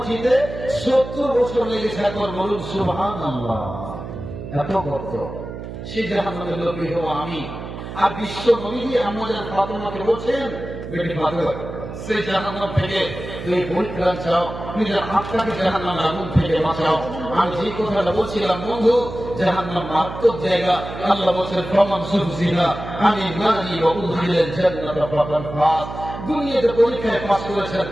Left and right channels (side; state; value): right; noise; hum, 9 dB below the sound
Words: 70 বছর লেগেছে। একবার বলুন সুবহানাল্লাহ। এত গর্ত, সেই জাহান্নামের লোকই হবো আমি। আর বিশ্ব নবীজি আমাদের ফাতেমাকে বলছেন বেটি ফাতেমা, সেই জাহান্নাম থেকে তুমি পরিত্রাণ চাও, নিজের আত্মাকে জাহান্নামের আগুন থেকে বাঁচাও। আমি যে কথাটা বলছিলাম বন্ধু, জাহান্নাম মারাত্মক জায়গা। আল্লাহ বলছেন ফামান সুফসিহা আনিন নারি ওয়া উদখিলাল জান্নাতা ফাকাদ ফাজ। দুনিয়াতে পরীক্ষায় পাস করেছেন